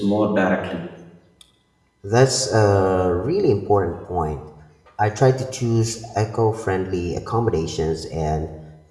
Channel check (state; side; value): identical; both; correlation 1.00